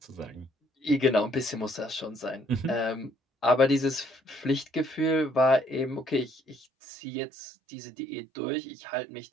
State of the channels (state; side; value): drops out; left; at 6.7 s